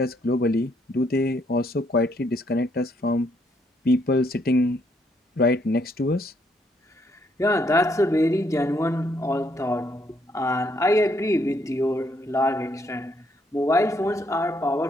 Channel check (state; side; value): normal; both; correlation 0.72